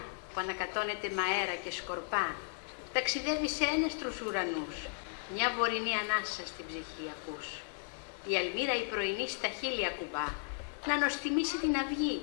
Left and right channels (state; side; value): silent; right; digital silence